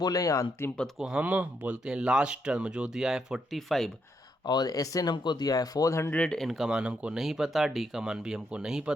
या अंतिम पद को हम बोलते हैं लास्ट टर्म, जो दिया है 45, और Sn हमको दिया है 400। n का मान हमको नहीं पता, d का मान भी हमको नहीं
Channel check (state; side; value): normal; both; correlation 0.78